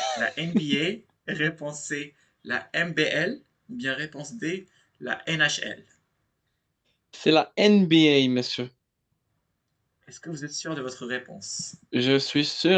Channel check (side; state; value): both; identical; correlation 1.00